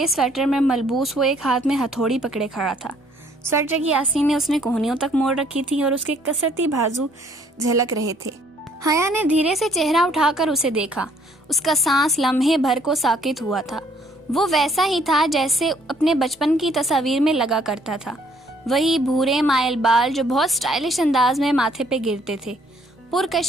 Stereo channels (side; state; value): both; normal; correlation 0.63